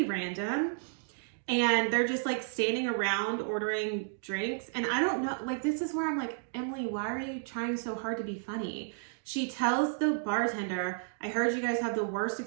random. And they're just like standing around ordering drinks. And I don't know, like, this is where I'm like, Emily, why are you trying so hard to be funny? She tells the bartender, I heard you guys have the worst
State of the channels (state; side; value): silent; left; digital silence